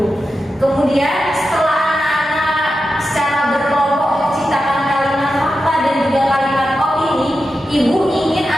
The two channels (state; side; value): normal; both; correlation 0.90